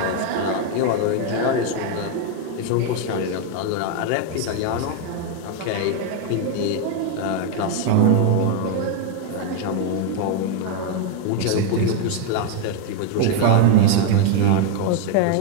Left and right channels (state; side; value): different; both; correlation 0.01